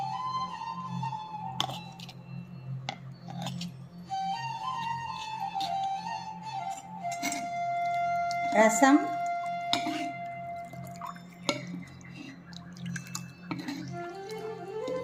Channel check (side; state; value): both; identical; correlation 1.00